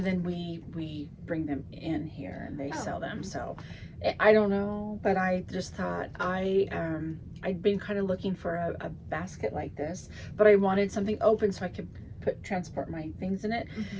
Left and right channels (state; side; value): identical; both; correlation 1.00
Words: then we bring them in here and they sell them. So I don't know, but I just thought I'd been kind of looking for a basket like this, but I wanted something open so I could transport my things in it.